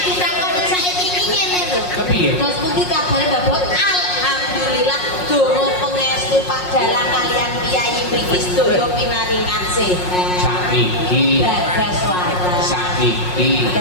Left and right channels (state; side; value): late; right; 5.5 ms